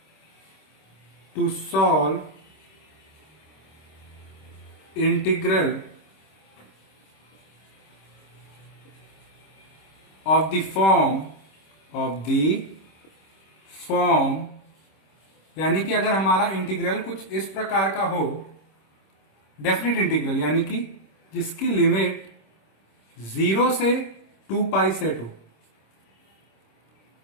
to solve integral of the form यानी कि अगर हमारा इंटीग्रल कुछ इस प्रकार का हो, डेफिनेट इंटीग्रल यानी कि जिसकी लिमिट 0 से 2 पाई सेट हो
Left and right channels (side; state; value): right; late; 26 ms